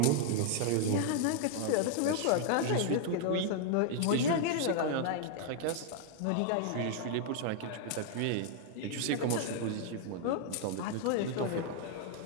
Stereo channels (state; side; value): different; both; correlation 0.00